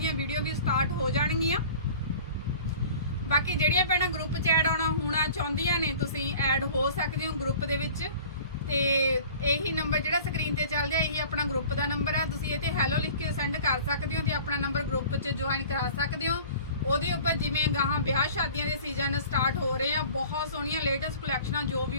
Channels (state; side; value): inverted; both; correlation -0.45